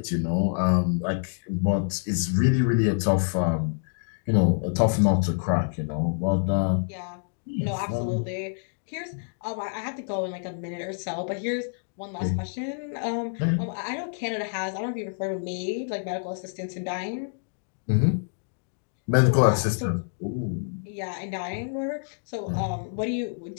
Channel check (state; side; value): silent; right; digital silence